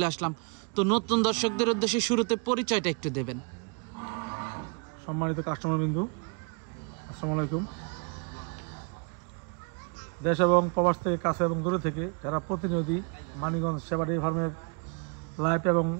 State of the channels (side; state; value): left; quieter; 33.7 dB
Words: আসলাম। তো নতুন দর্শকদের উদ্দেশ্যে শুরুতে পরিচয়টা একটু দেবেন। সম্মানিত কাস্টমার বিন্দু, আসসালামু আলাইকুম। দেশ এবং প্রবাস থেকে, কাছে এবং দূরে থেকে যারা প্রতিনিয়ত মানিকগঞ্জ সেবা ডেইরি ফার্মের লাইভ এবং